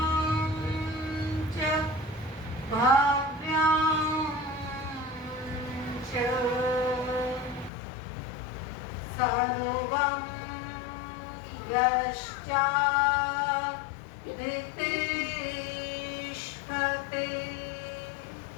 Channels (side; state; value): right; drops out; at 7.7 s